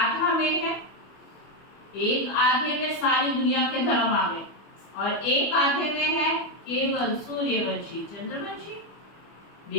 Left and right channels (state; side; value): late; right; 25 ms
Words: में है, एक आधे में सारी दुनिया के धर्म आ गए और एक आधे में है केवल सूर्यवंशी चंद्रवंशी